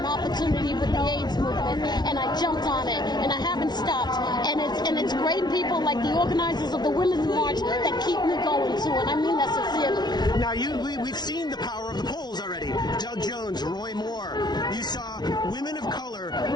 opportunity with the AIDS movement, and I jumped on it, and I haven't stopped. And it's great people like the organizers of the Women's March that keep me going too, and I mean that sincerely. Now, we've seen the power of the polls already. Doug Jones, Roy Moore. You saw women of color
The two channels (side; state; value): right; late; 0.20 ms